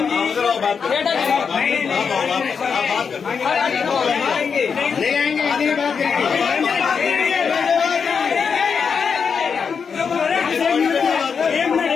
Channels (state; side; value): quieter; right; 6.1 dB